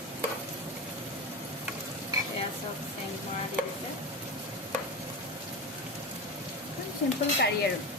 এয়া চব চেংমৰা দি দিছে। চিম্পল কাৰী আৰু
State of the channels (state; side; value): normal; both; correlation 0.22